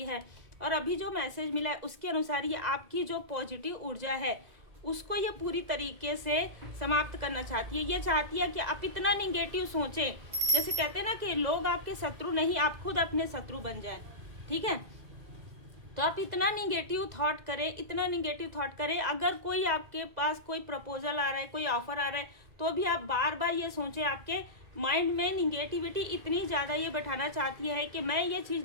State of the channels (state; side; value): late; left; 2.0 ms